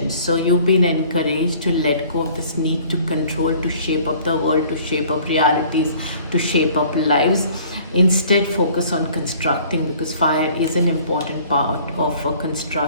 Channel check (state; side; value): inverted; both; correlation -0.53